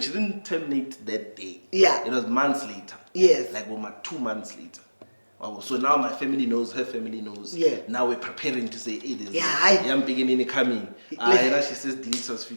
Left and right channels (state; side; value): inverted; both; correlation -1.00